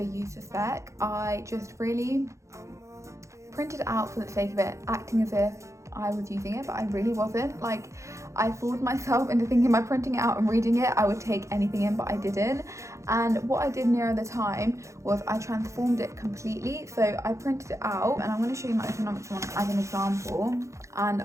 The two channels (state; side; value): late; left; 0.15 ms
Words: used a spec. I just really printed it out for the sake of it, acting as if I was using it, but I really wasn't. Like, I fooled myself into thinking by printing it out and reading it I would take anything in, but I didn't. And what I did nearer the time was I transformed it completely. So I printed it out, and I'm going to show you my economics one as an example,